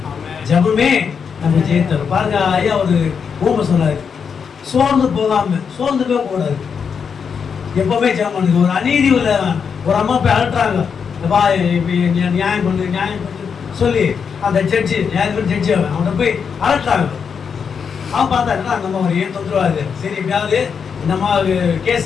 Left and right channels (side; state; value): right; quieter; 6.5 dB